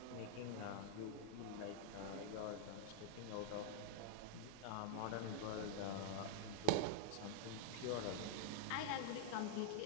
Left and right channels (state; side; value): different; both; correlation -0.01